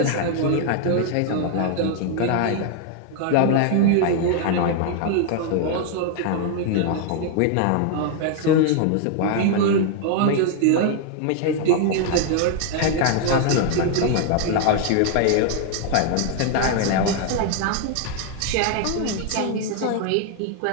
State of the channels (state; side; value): different; both; correlation 0.00